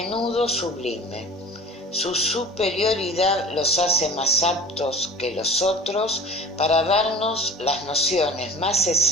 sublime. Su superioridad los hace más aptos que los otros para darnos las nociones más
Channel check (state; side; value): normal; both; correlation 0.41